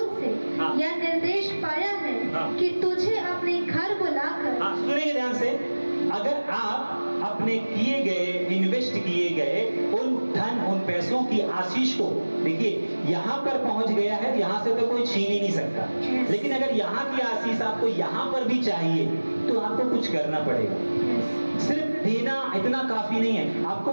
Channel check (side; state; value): both; inverted; correlation -1.00